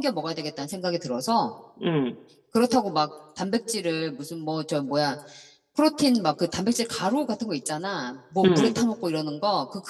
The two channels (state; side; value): identical; both; correlation 1.00